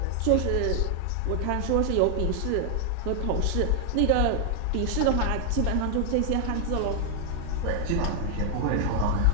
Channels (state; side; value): different; both; correlation 0.00